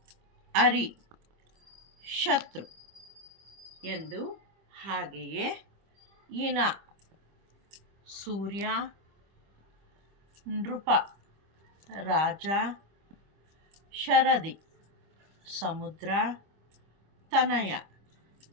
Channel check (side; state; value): left; late; 25 ms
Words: ಅರಿ, ಶತ್ರು ಎಂದು, ಹಾಗೆಯೇ ಇನ, ಸೂರ್ಯ, ನೃಪ, ರಾಜ, ಶರದಿ, ಸಮುದ್ರ, ತನಯ,